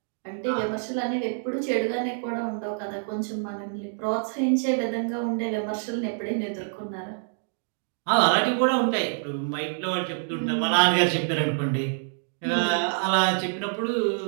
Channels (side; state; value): left; silent; digital silence